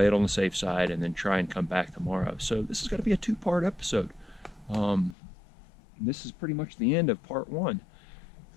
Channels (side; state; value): right; drops out; at 5.2 s